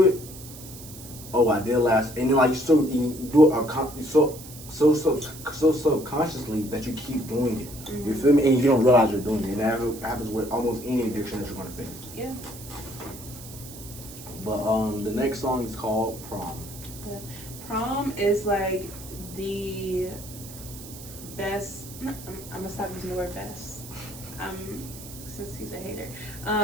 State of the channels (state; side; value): noise; right; hiss, 15 dB below the sound